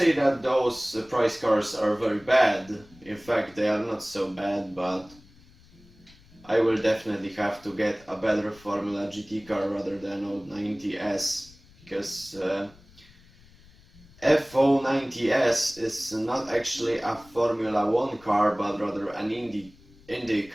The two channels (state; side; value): noise; left; rumble, 26 dB below the sound